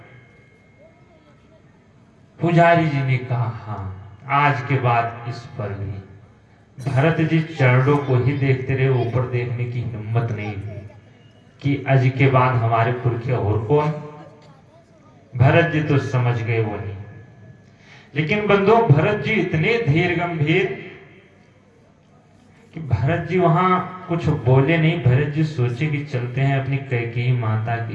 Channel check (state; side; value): identical; both; correlation 1.00